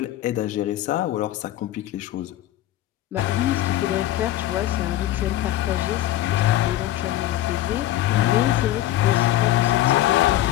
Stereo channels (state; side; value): quieter; right; 14.0 dB